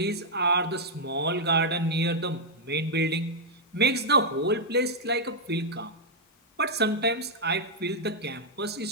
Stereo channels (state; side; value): normal; both; correlation -0.05